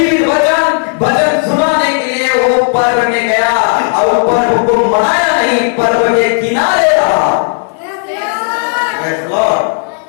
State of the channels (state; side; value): silent; right; digital silence